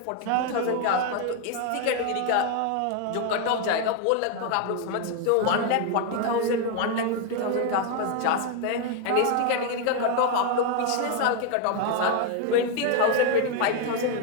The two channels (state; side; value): different; both; correlation 0.01